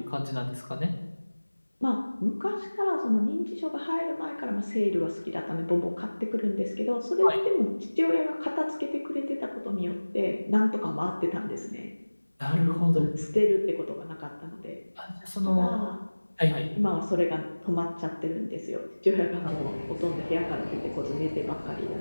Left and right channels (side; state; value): both; inverted; correlation -1.00